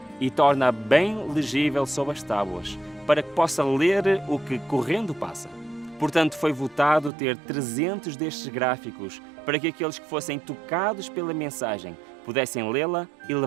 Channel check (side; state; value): left; drops out; at 7.1 s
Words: e torna bem legível sob as tábuas, para que possa ler o que correndo passa. Portanto, foi votado ter 300 destes gráficos, para que aqueles que fossem tocados pela mensagem pudessem lê-la e